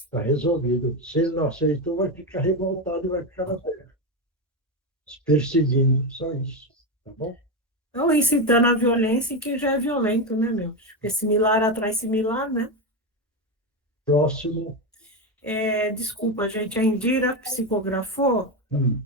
resolvido. Se ele não aceitou, vai ficar revoltado e vai ficar na Terra. Perseguindo, só isso. Tá bom? Ou incitando a violência em quem já é violento, né, meu? Porque similar atrai similar, né? Próximo. Desculpa, gente, a Indira psicografou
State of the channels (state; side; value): normal; both; correlation 0.12